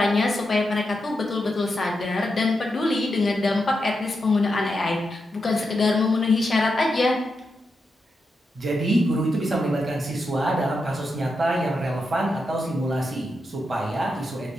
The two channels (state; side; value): normal; both; correlation 0.86